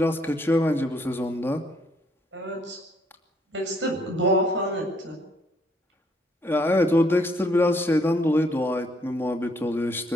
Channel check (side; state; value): both; normal; correlation 0.68